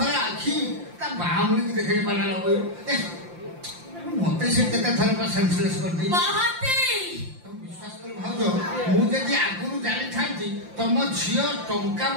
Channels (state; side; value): late; left; 5.8 ms